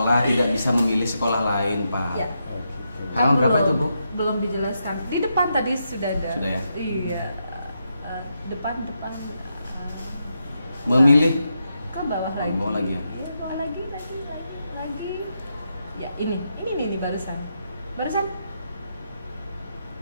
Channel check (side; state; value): both; inverted; correlation -0.83